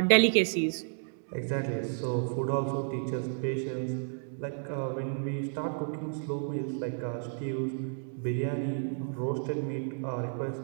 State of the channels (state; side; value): silent; left; digital silence